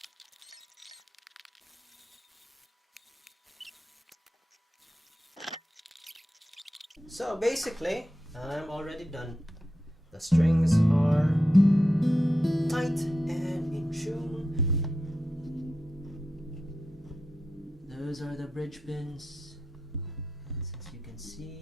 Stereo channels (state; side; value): normal; both; correlation 0.88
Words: So basically, I'm already done. The strings are tight and in tune. Those are the bridge pins. As you can